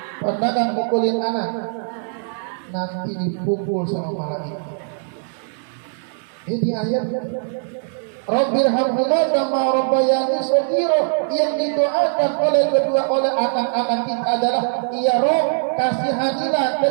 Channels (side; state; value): left; silent; digital silence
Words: Pernah gak mukulin anak? Nanti dipukul sama malaikat. Ini ayat Rabbirhamhuma kama rabbayani shaghira, yang didoakan oleh anak-anak kita adalah, ya Rabb, kasihanilah